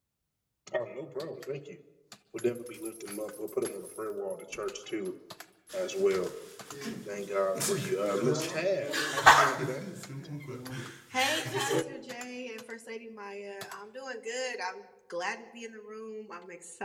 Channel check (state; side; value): identical; both; correlation 1.00